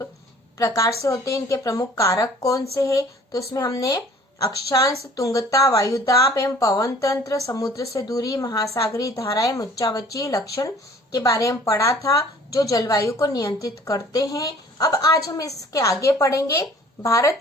प्रकार से होते हैं, इनके प्रमुख कारक कौन से हैं। तो उसमें हमने अक्षांश, तुंगता, वायुदाब एवं पवन तंत्र, समुद्र से दूरी, महासागरीय धाराएं, मुच्चावचीय लक्षण के बारे में पढ़ा था, जो जलवायु को नियंत्रित करते हैं। अब आज हम इसके आगे पढ़ेंगे भारत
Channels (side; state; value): both; normal; correlation 0.52